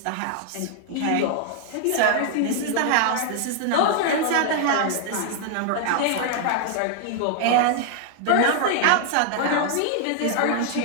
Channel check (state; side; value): different; both; correlation 0.00